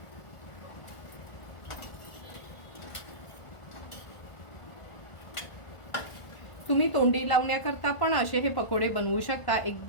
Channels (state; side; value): late; right; 1.4 ms